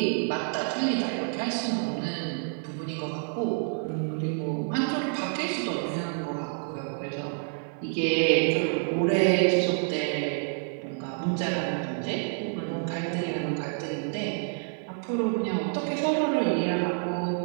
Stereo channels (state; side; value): silent; left; 57 dB below the other